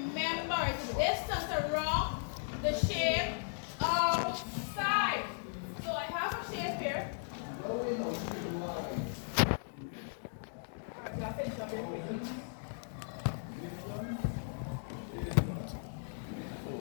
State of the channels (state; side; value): silent; right; digital silence